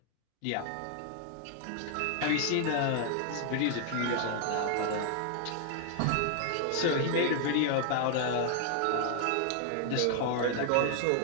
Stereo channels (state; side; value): different; both; correlation 0.00